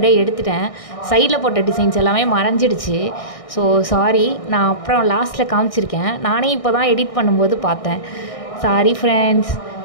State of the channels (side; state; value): right; late; 1.6 ms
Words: எடுத்துட்டேன். சைடில் போட்ட டிசைன்ஸ் எல்லாமே மறைஞ்சிடுச்சு. ஸோ சாரி, நான் அப்புறம் லாஸ்ட்டில் காமிச்சிருக்கேன். நானே இப்போ தான் எடிட் பண்ணும்போது பார்த்தேன். Sorry friends.